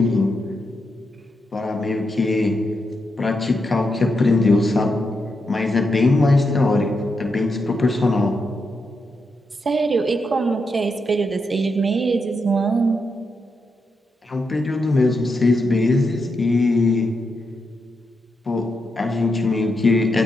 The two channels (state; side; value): normal; both; correlation 0.84